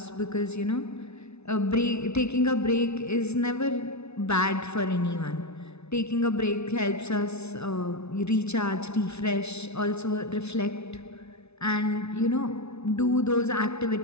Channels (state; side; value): late; right; 0.81 ms